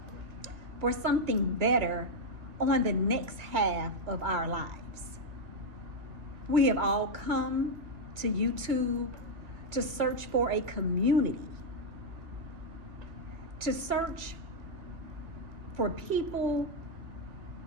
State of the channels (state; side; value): late; left; 2.2 ms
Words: for something better on the next half of our lives. We have all come to YouTube to search for a community, to search for people